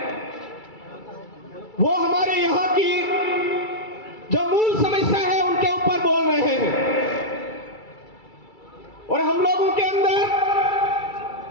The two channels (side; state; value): right; late; 2.3 ms